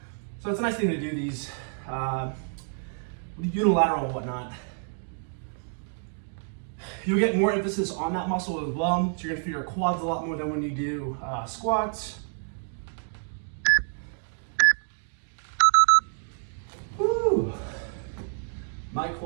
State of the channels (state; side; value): silent; left; 59 dB below the other